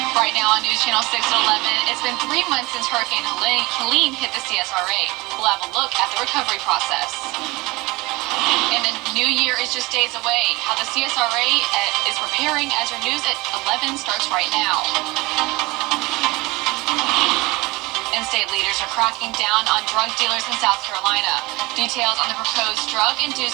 Right now on News Channel 6 at 11, it's been 3 months since Hurricane Helene hit the CSRA. We'll have a look at the recovery process. And the new year is just days away. How the CSRA is preparing as your news at 11 starts right now. And state leaders are cracking down on drug dealers in South Carolina. Details on the proposed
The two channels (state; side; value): quieter; left; 22.5 dB